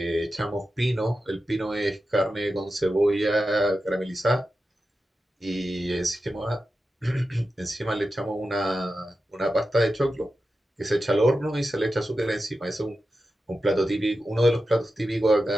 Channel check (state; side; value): normal; both; correlation 0.91